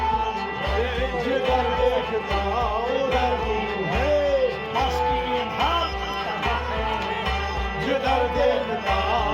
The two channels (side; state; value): both; identical; correlation 1.00